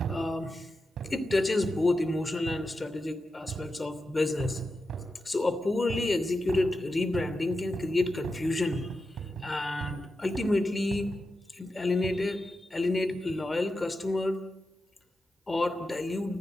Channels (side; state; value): both; normal; correlation 0.90